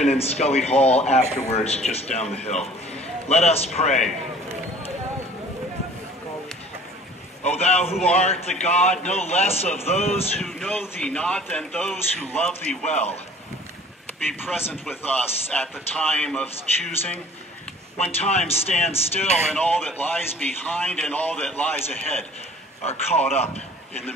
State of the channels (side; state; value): both; normal; correlation 0.50